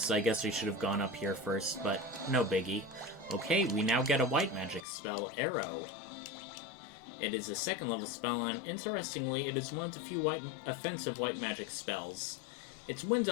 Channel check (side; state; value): right; drops out; at 4.9 s